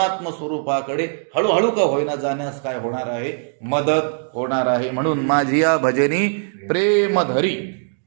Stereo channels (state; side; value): silent; left; digital silence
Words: स्वरूपाकडे हळूहळू का होईना जाण्यास काय होणार आहे, मदत होणार आहे. म्हणून माझी या भजनी प्रेम धरी